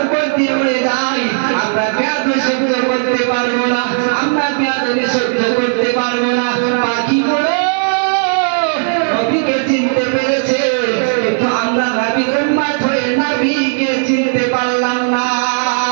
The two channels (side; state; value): left; silent; 62 dB below the other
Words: উপর দিয়ে উড়ে যাই আমরা বেয়াদবি সহ্য করতে পারবো না, আমরা বেয়াদবি সহ্য করতে পারবো না। পাখিগুলো নবীকে চিনতে পেরেছে, কিন্তু আমরা নবীর উম্মত হয়ে নবীকে চিনতে পারলাম না।